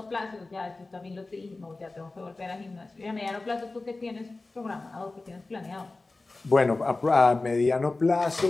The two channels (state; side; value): quieter; right; 3.3 dB